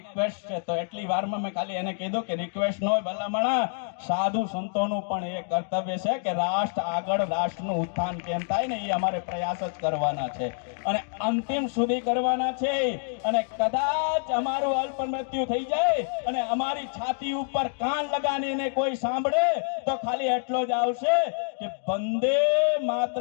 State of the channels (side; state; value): right; silent; digital silence